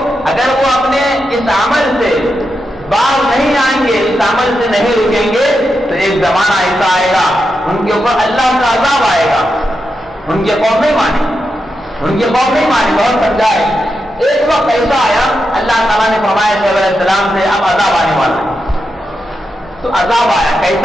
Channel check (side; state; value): both; normal; correlation 0.87